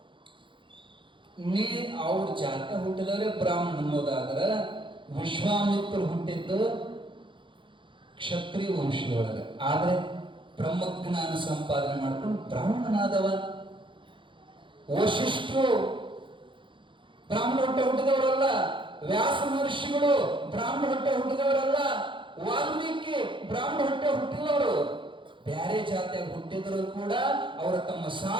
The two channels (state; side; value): late; left; 0.24 ms